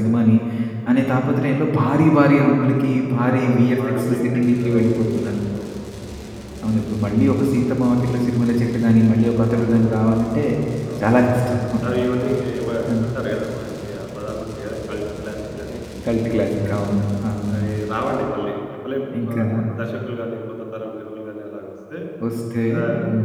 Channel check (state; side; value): identical; both; correlation 1.00